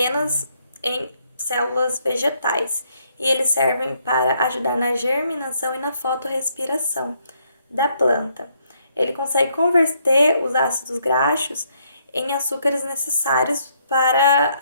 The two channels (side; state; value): both; inverted; correlation -0.72